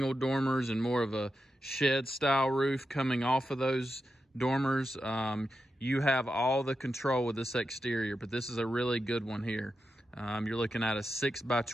dormers and more of a shed-style roof coming off of those dormers. You have all the control with this exterior, but this is a really good one here. You're looking at a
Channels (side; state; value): both; normal; correlation 0.88